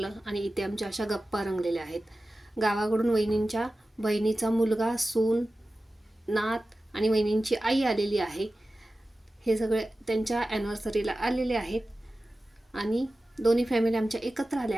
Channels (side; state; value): both; normal; correlation 0.95